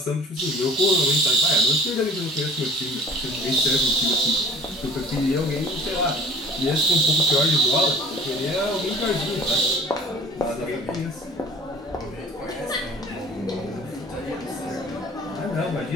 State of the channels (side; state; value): both; normal; correlation 0.46